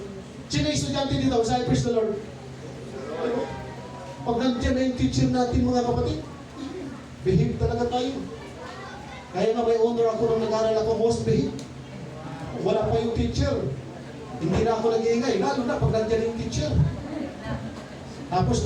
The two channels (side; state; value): both; identical; correlation 1.00